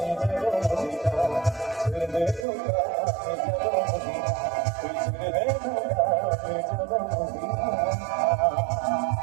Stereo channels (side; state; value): left; drops out; at 2.5 s